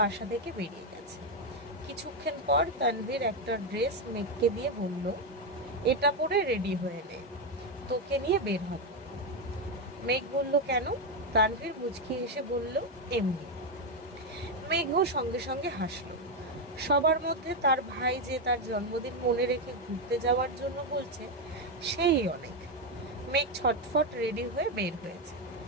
থেকে বেরিয়ে গেছে। কিছুক্ষণ পর তানভীর একটা ড্রেস মেঘকে দিয়ে বলল, এটা পরে রেডি হয়ে নে, তোকে নিয়ে বের হব। মেঘ বলল, কেন? তানভীর মুচকি হেসে বলল, এমনি। মেঘও সঙ্গে সঙ্গে হাসলো। সবার মধ্যে তার ভাই যে তার জন্মদিন মনে রেখে ঘুরতে যাওয়ার জন্য বলছে, সেই অনেক। মেঘ ছটফট রেডি হয়ে বের হয়েছে।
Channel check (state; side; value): normal; both; correlation 0.06